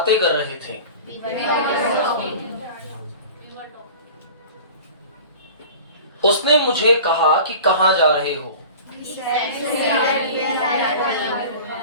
कर रहे थे। उसने मुझे कहा कि कहाँ जा रहे हो?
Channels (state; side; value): inverted; both; correlation -0.39